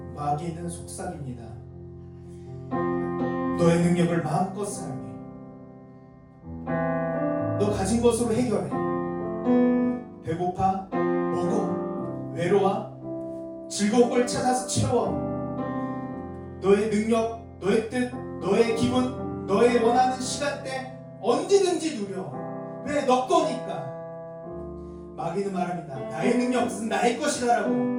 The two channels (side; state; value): both; identical; correlation 1.00